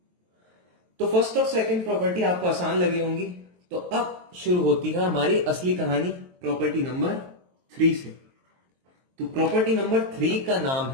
तो फर्स्ट और सेकंड प्रॉपर्टी आपको आसान लगी होंगी। तो अब शुरू होती है हमारी असली कहानी प्रॉपर्टी नंबर 3 से। तो प्रॉपर्टी नंबर 3 का नाम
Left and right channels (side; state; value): left; late; 23 ms